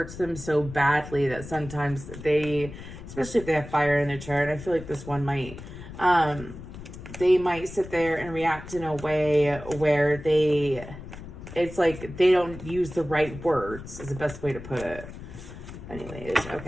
them so badly that sometimes they, especially if they have fire in their chart, I feel like this one might, they might sit there and react in a way where it's like they don't use the right words is the best way to put it. Anyways,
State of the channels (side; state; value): left; noise; rumble, 13 dB below the sound